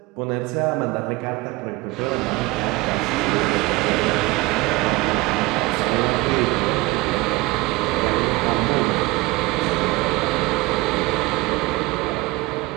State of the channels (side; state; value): left; quieter; 21.4 dB